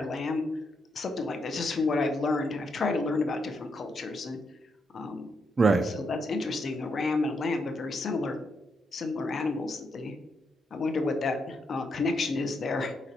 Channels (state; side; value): normal; both; correlation 0.80